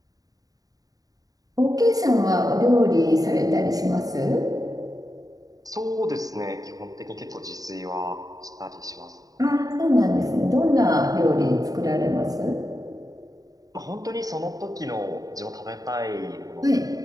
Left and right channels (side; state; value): left; late; 0.18 ms